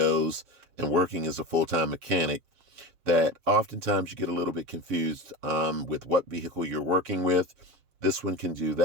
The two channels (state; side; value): late; left; 7.2 ms